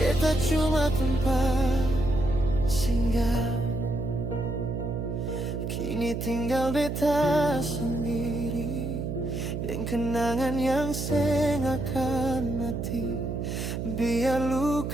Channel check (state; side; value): noise; right; hum, 3 dB below the sound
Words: cuma tempat singgah. Kini tinggal beta sendiri, yang kenangan yang sengakan mati. Biar